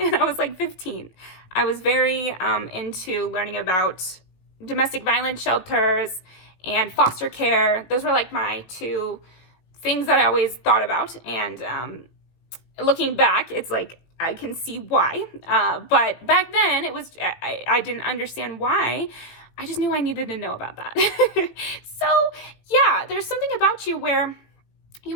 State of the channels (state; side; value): late; right; 18 ms